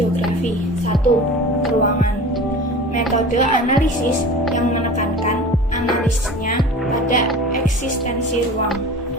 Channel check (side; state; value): both; normal; correlation 0.37